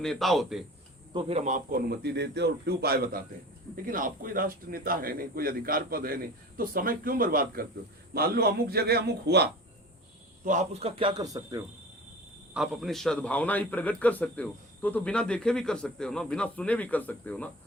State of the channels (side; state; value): both; normal; correlation 0.38